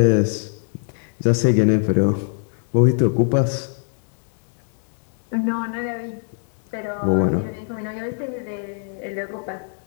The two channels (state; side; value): silent; right; digital silence